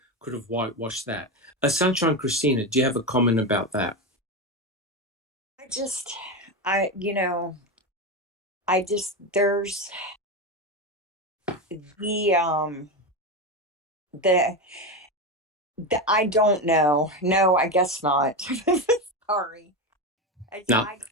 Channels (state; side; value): normal; both; correlation 0.16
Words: could have whitewashed that. Sunshine Christina, do you have a comment about that? There's I don't know. No, I guess not. Sorry. No.